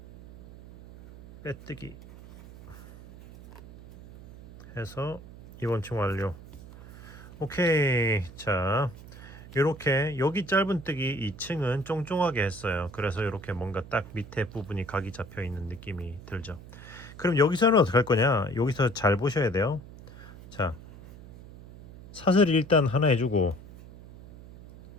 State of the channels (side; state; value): right; noise; hum, 17 dB below the sound